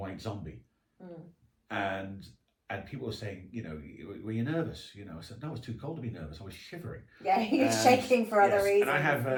Zombie, and people were saying, you know, were you nervous? You know, I said no, it was too cold to be nervous. I was shivering. Yeah, you're shaking for other reasons. And I have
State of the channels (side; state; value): both; identical; correlation 1.00